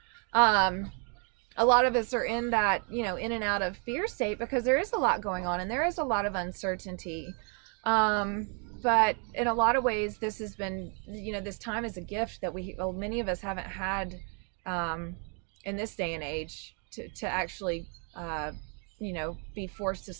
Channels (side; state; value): left; quieter; 39.3 dB